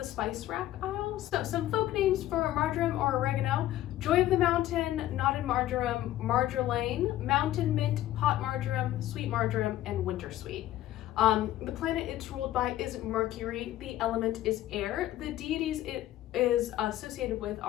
spice rack aisle. So some folk names for marjoram or oregano: Joy of the Mountain, Knotted Marjoram, Marjolaine, Mountain Mint, Hot Marjoram, Sweet Marjoram, and Winter Sweet. The planet it's ruled by is Mercury. The element is air. The deities it is associated with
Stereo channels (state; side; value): quieter; right; 14.0 dB